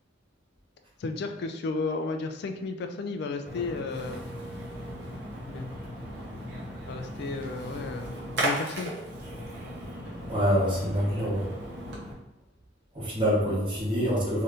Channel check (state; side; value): normal; both; correlation 0.47